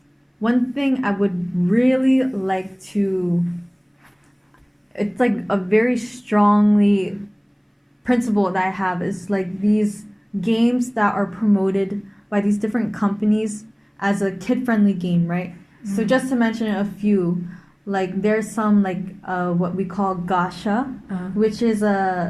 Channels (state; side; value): identical; both; correlation 1.00